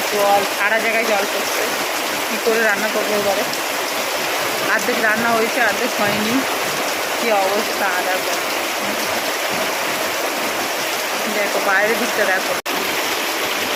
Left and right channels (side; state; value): both; identical; correlation 1.00